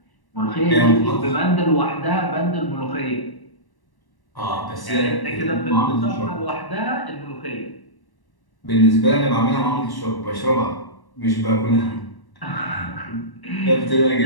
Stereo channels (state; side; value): late; right; 1.1 ms